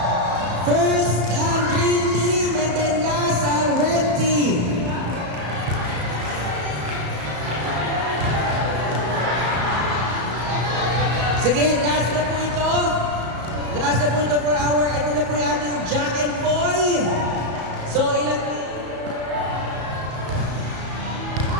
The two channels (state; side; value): late; left; 34 ms